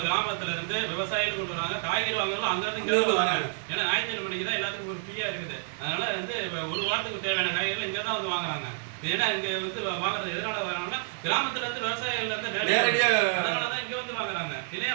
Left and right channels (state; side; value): silent; left; 59 dB below the other